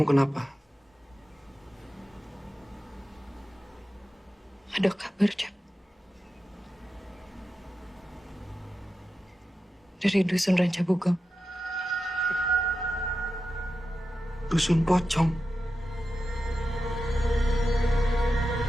kenapa? Ada kabar, Cak. Dari Dusun Rancabugong. Dusun Pocong.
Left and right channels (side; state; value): both; normal; correlation 0.91